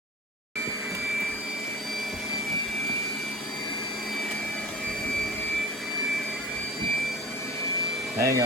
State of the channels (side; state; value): both; normal; correlation 0.38